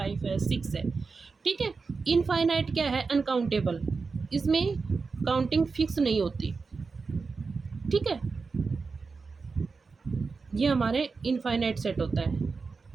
है 6 है। ठीक है, इनफाइनाइट क्या है, अनकाउंटेबल, इसमें काउंटिंग फिक्स नहीं होती। ठीक है, ये हमारे इनफाइनाइट सेट होता है।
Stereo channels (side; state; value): left; quieter; 4.6 dB